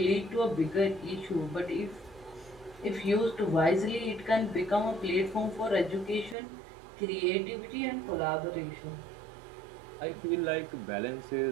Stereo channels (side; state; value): left; drops out; at 6.4 s